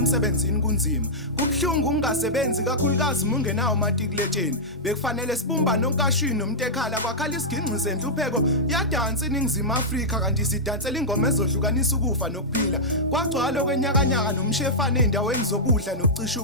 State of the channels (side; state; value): both; normal; correlation -0.09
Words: kunzima kubhlungu ungasebenzi kakhulukazi mungenawo matikuletsheni bekufanele sibumbane onkashini nomuntu ekhala kwakhala isiginci senhlupheko yadansa iningizimu Afrika kanti sidansela ingoma ezohlukanisa ukufa nokuphila kwagcwala kwenyakanyaka nomshefane endaweni zokudla nokucisha